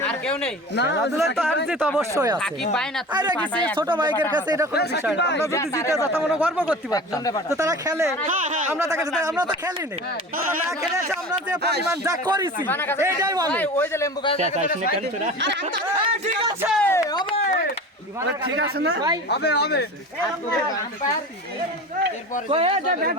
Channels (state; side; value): normal; both; correlation 0.35